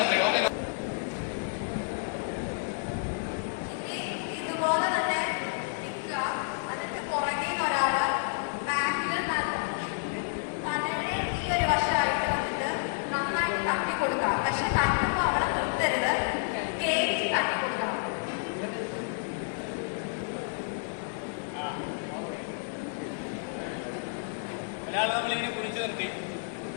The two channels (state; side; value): silent; right; digital silence